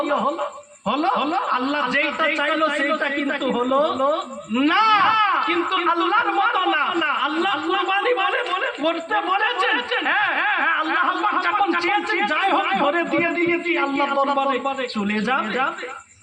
আল্লাহ যেটা চাইলো সেইটা কিন্তু হলো না। কিন্তু আল্লাহর মতো না, আল্লাহ কুরবানি বলে করতে বলেছেন। হ্যাঁ, আল্লাহ যখন চেয়েছেন যাই হোক ধরে দিয়ে আল্লাহ দরবারে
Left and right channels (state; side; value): identical; both; correlation 1.00